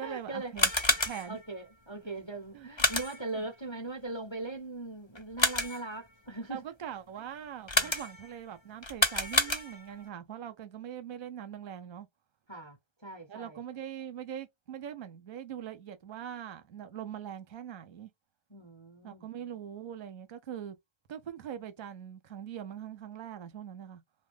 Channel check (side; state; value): right; late; 1.3 ms